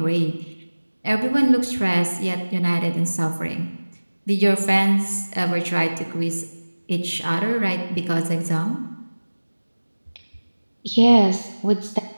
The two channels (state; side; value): inverted; both; correlation -1.00